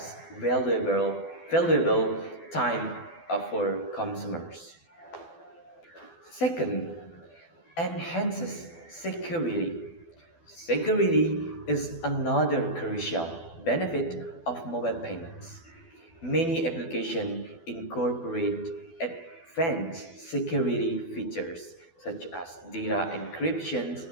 valuable time for consumers. Second, enhances security. Security is another crucial benefit of mobile payments. Many applications incorporate advanced security features such as data encryption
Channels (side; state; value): right; late; 12 ms